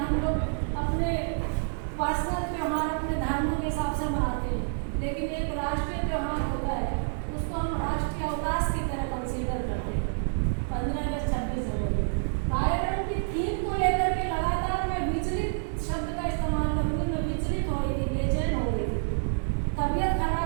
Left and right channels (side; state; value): left; silent; 59 dB below the other